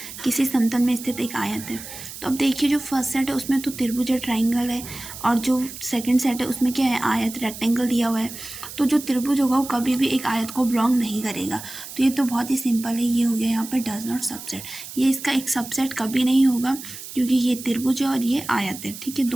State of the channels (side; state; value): right; noise; hiss, 12 dB below the sound